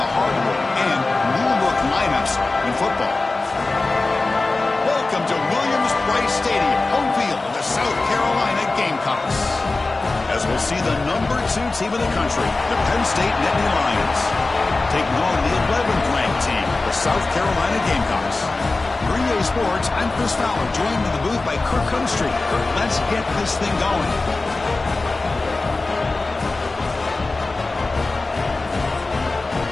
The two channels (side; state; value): right; quieter; 3.4 dB